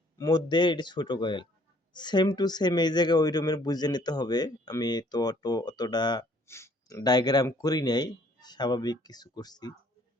মধ্যে, এটা ছোট কয়েল, সেম টু সেম এই জায়গায় ওই রুমের বুঝে নিতে হবে। আমি তো অতটা ডায়াগ্রাম করি নাই, স্বাভাবিক কিছু করছি।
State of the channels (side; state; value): both; normal; correlation 0.61